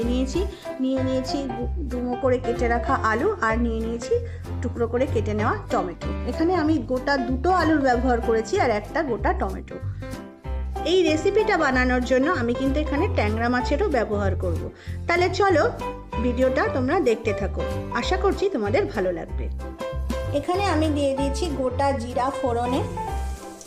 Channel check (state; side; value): identical; both; correlation 1.00